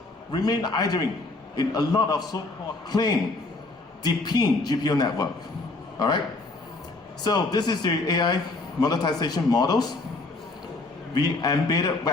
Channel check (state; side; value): quieter; right; 3.2 dB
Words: remain idling in a lot of so-called clean, deepin GPU network. All right. So this is the AI monetization models. We embedded